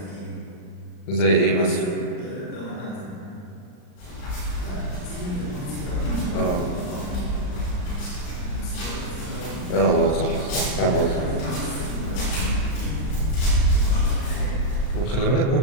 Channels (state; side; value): late; right; 39 ms